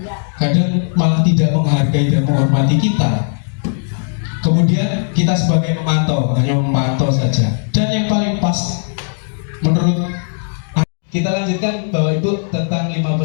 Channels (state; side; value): silent; right; digital silence